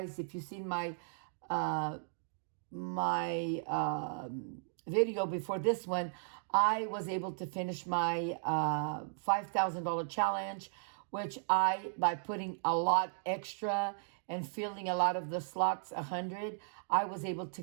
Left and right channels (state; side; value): silent; left; digital silence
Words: if you've seen my video before this one, I was able to finish my $5,000 challenge, which by putting a lot extra and filling a lot of the slots 100, I was able to